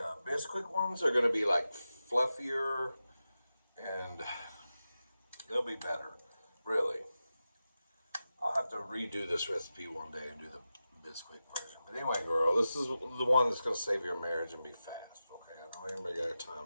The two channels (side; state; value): both; inverted; correlation -0.92